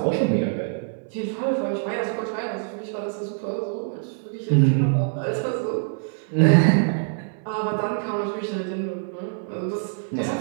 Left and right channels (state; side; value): silent; left; digital silence